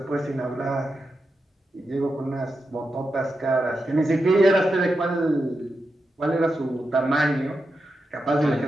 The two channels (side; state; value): both; normal; correlation 0.88